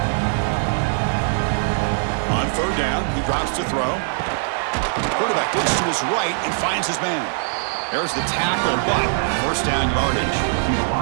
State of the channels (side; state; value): left; silent; 64 dB below the other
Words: On third down, he drops to throw. Quarterback looks to his right and finds his man. There's the tackle, but first down yardage.